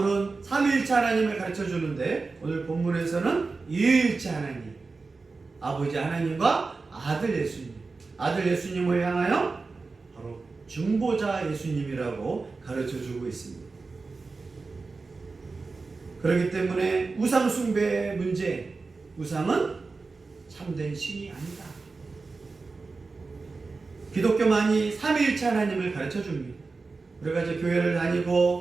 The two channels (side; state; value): left; quieter; 4.1 dB